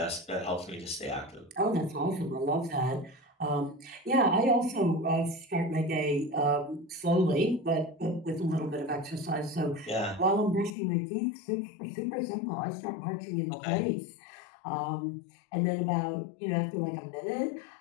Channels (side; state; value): right; drops out; at 10.8 s